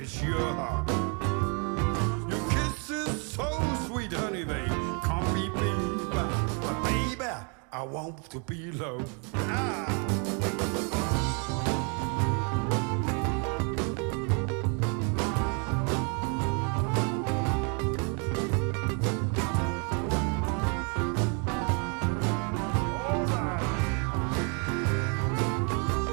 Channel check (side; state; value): left; quieter; 36.7 dB